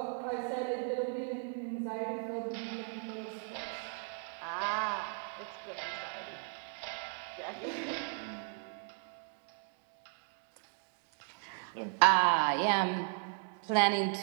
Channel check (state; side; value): silent; left; 53 dB below the other